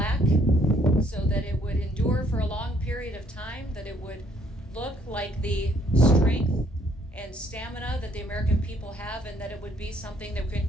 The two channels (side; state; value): both; normal; correlation 0.65